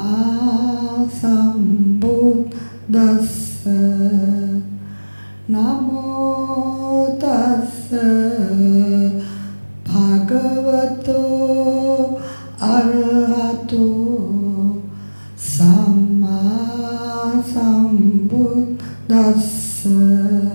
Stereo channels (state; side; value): inverted; both; correlation -1.00